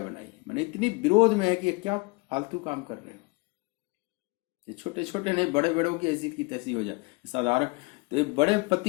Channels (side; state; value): right; quieter; 26.6 dB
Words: बनाई। मैंने इतनी विरोध में है कि ये क्या फालतू काम कर रहे हो। ये छोटे छोटे नहीं, बड़े बड़ों की ऐसी की तैसी हो जाए साधारण। तो ये बड़े